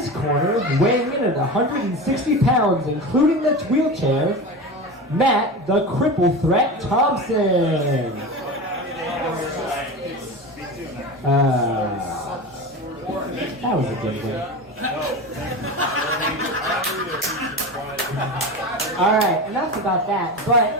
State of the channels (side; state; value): both; normal; correlation 0.27